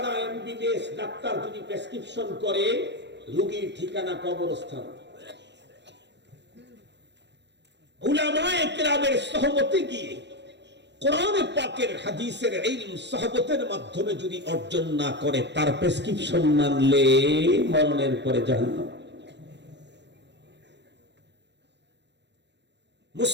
এমবিবিএস ডাক্তার যদি প্রেসক্রিপশন করে, রোগীর ঠিকানা কবরস্থান। উলামায়ে কেরামের সহমতে গিয়ে কোরআন পাকের হাদিসের ইলম সহবতের মাধ্যমে যদি অর্জন না করে, তার প্রেসক্রিপশন মানলে মরণের পরে জাহান্নাম।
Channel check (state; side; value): late; left; 0.51 ms